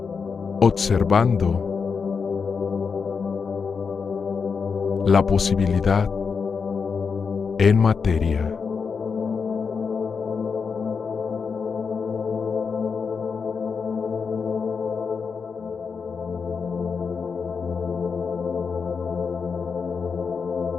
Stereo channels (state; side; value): quieter; right; 5.6 dB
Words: Observando la posibilidad en materia.